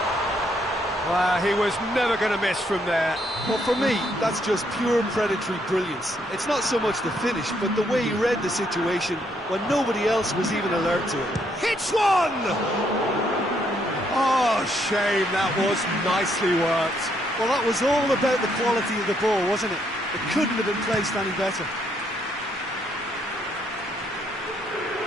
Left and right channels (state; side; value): normal; both; correlation 0.72